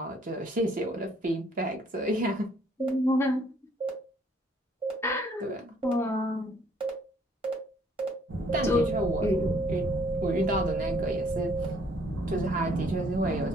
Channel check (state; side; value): normal; both; correlation 0.63